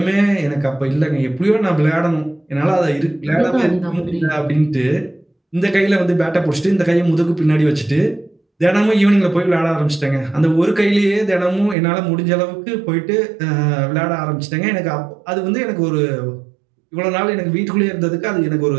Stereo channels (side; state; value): left; drops out; at 11.8 s